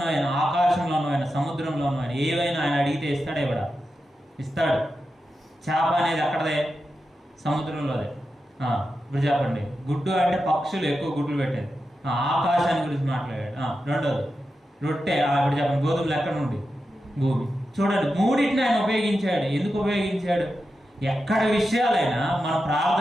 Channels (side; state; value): both; normal; correlation 0.90